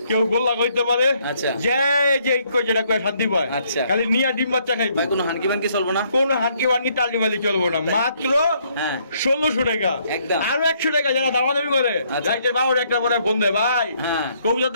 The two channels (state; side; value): inverted; both; correlation -0.69